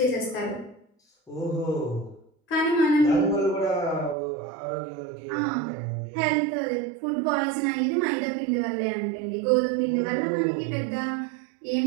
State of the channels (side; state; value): left; drops out; at 4.2 s